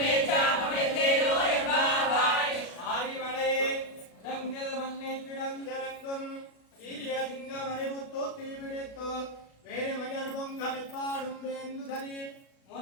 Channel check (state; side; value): late; right; 36 ms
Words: என்பாவாய் ஆரிமலை இடங்கள் மண்ணை கிடந்திறங்கும் சீரிய சிங்கம் அறிவுத்தோ தீவிடித்தோ வேறு மயர் பொங்க வெப்பாடும் வேந்து தரி